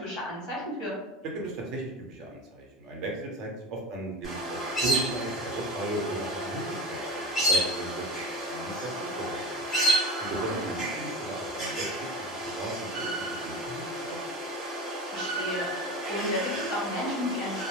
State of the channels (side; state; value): both; normal; correlation 0.31